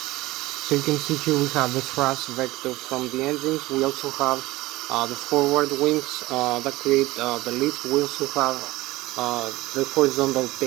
you can see here we have the thrust vector from the engines. We also have the forward wings that create the lift. We also have the horizontal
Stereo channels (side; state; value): left; quieter; 18.9 dB